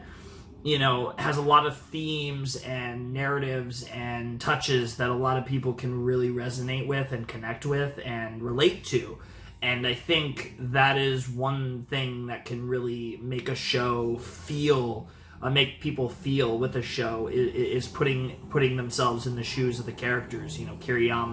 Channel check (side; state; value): both; identical; correlation 1.00